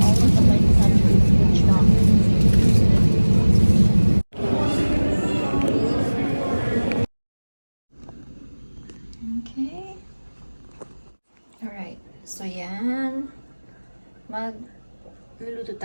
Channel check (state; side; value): inverted; both; correlation -1.00